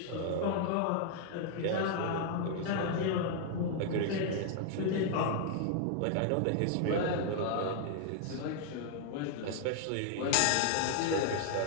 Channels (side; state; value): both; different; correlation 0.00